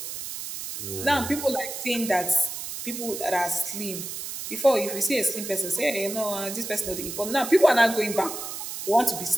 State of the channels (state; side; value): noise; right; hiss, 7 dB below the sound